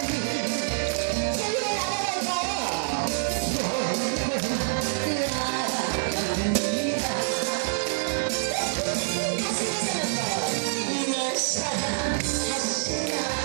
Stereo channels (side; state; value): left; silent; digital silence